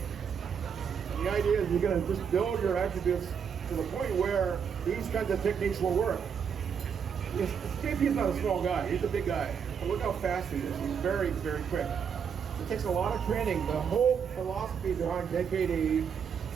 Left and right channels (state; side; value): quieter; left; 7.1 dB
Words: the idea is you're going to just build your attributes to the point where these kinds of techniques will work. JP's not a small guy, he's a big guy. And look how fast he is. He's very, very quick. It takes a lot of training. The whole philosophy behind JKD